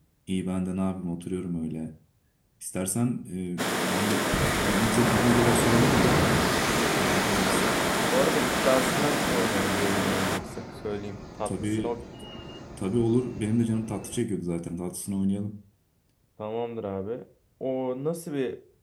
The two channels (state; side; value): identical; both; correlation 1.00